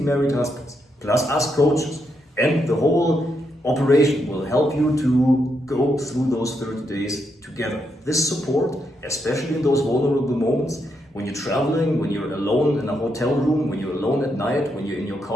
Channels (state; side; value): normal; both; correlation 0.80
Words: married husbands, plus us coaches, and the whole operation will help you to go through those 30 days together. This support, especially in those vulnerable moments, when you're traveling, when you're alone in a hotel room, when you're alone at night, when you're in your